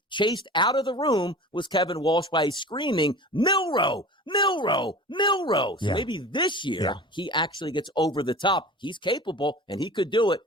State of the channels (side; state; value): both; normal; correlation 0.38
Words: chased out of the room was Kevin Walsh by screaming, Milroe, Milroe, Milroe. So maybe this year he actually gets over the top. He's capable, and he could do it,